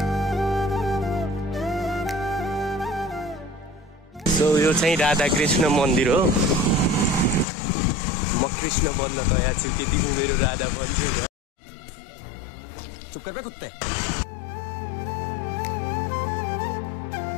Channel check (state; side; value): drops out; right; at 7.5 s